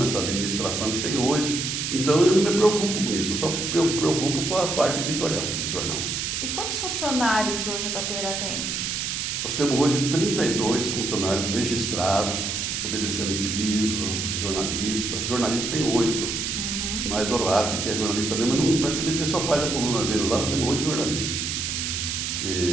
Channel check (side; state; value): right; noise; hiss, 2 dB below the sound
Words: essa administração que tem hoje. Então eu não me preocupo com isso, eu só me preocupo com a parte editorial do jornal. E quantos funcionários hoje o Tapera tem? Nós temos hoje 32 funcionários registrados, obedecendo piso, de jornalistas. Jornalista tem 8, mais o Rati, que é jornalista mesmo, mas praticamente ele só faz a coluna dele lá, nós temos 8 jornalistas.